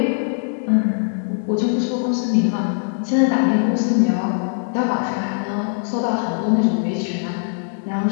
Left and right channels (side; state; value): right; silent; 62 dB below the other